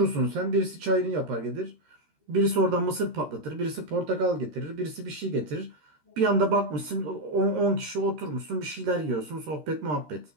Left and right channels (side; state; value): left; late; 13 ms